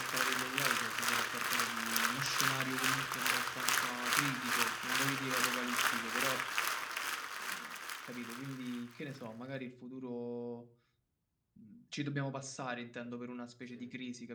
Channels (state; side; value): identical; both; correlation 1.00